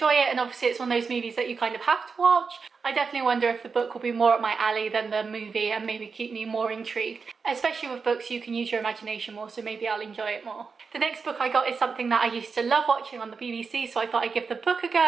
it, and obviously it's one of those movies that you kind of have to watch, I definitely wonder if the book will be more up my alley than the movie and maybe keep me more intrigued. Especially with books, you can use your imagination more, so maybe I'll enjoy it more. The next book I got is something that I used to love watching on the BBC, so I thought I'd give the book a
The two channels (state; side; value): quieter; left; 5.1 dB